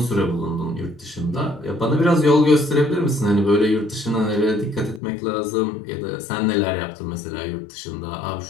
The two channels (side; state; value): right; drops out; at 5.0 s